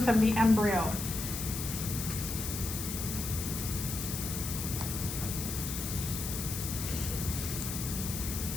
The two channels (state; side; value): noise; left; hiss, 5 dB below the sound